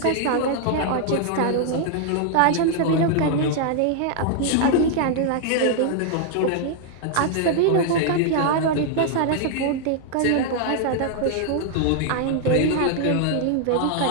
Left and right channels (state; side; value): different; both; correlation 0.00